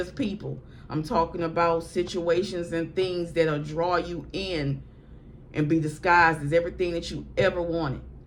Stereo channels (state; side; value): identical; both; correlation 1.00